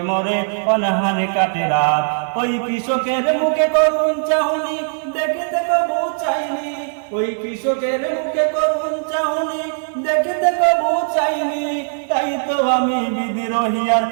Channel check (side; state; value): left; silent; 56 dB below the other